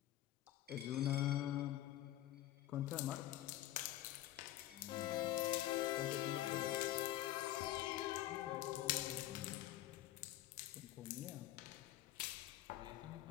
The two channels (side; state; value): right; quieter; 14.5 dB